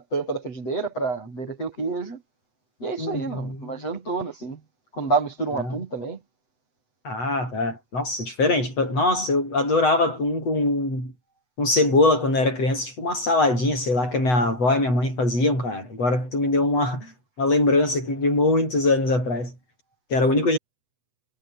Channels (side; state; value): right; late; 8.0 ms